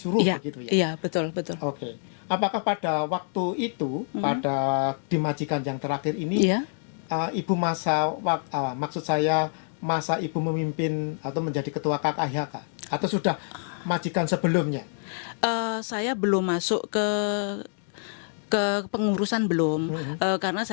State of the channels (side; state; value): right; silent; digital silence